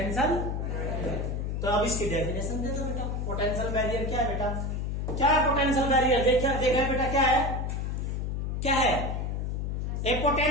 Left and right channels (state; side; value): noise; left; hum, 2 dB below the sound